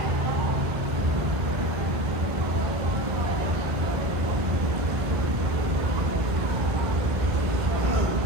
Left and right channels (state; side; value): late; left; 1.6 ms